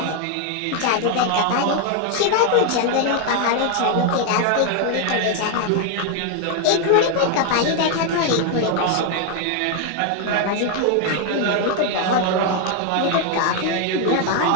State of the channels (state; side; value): different; both; correlation 0.01